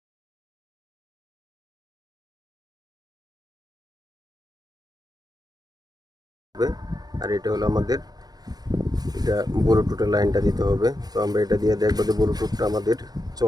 আর এটা হলো আমাদের, এটা ব্লুটুথের লাইনটা দিতে হবে। তো আমরা এটা দিয়ে দেখবো যে ব্লুটুথটা আমাদের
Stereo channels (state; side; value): late; left; 0.19 ms